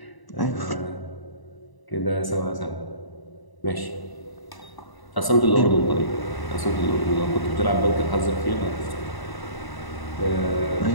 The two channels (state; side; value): late; right; 1.0 ms